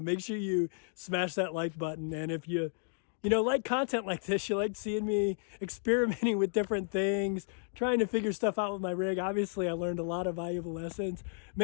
sure you smash that like button. And if you like content like this, you like seeing me experimenting with different things, trying to figure stuff out with my rig. Obviously, I learned a lot of valuable lessons.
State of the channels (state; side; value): silent; right; digital silence